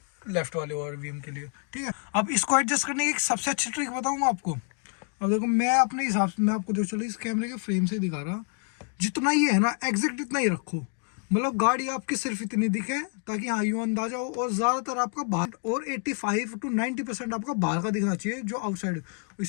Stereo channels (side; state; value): right; quieter; 39.2 dB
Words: लेफ्ट वाले ORVM के लिए, ठीक है। अब इसको एडजस्ट करने की एक सबसे अच्छी ट्रिक बताऊंगा आपको। अब देखो मैं अपने हिसाब से, मैं आपको देखो चलो इस कैमरे के फ्रेम से दिखा रहा, जितना ये है ना एग्जैक्ट इतना ही रखो, मतलब गाड़ी आपकी सिर्फ इतनी दिखे ताकि हाँ यूँ अंदाजा हो, और ज़्यादातर आपका बाहर और 85 to 90% आपका बाहर का दिखना चाहिए जो आउटसाइड।